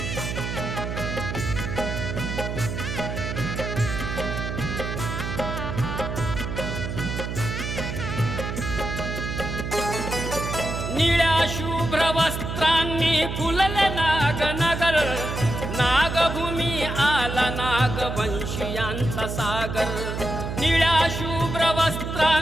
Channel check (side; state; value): right; noise; hum, 4 dB below the sound